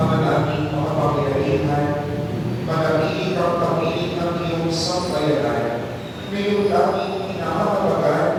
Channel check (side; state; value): both; identical; correlation 1.00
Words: namin makapangyarihan, manatili kang pamiling ng iyong sambayanan, ngayong daming pinahatabagan